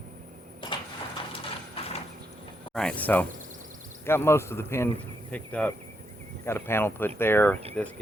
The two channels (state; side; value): normal; both; correlation 0.79